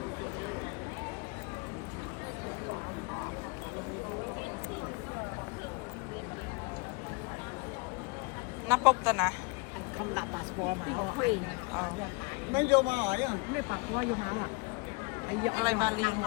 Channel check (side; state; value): right; quieter; 29.1 dB